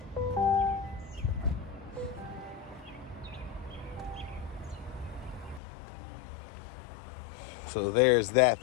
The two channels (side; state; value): right; drops out; at 5.6 s